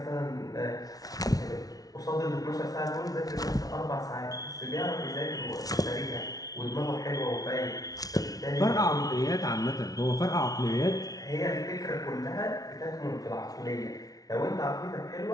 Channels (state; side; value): late; right; 0.18 ms